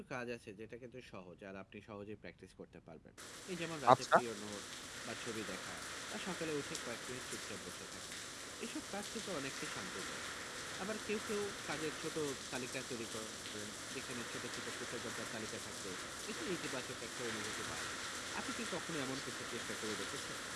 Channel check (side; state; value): both; identical; correlation 1.00